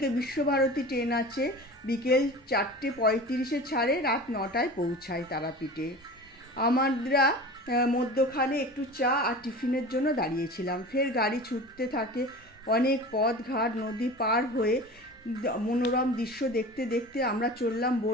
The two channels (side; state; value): both; normal; correlation 0.36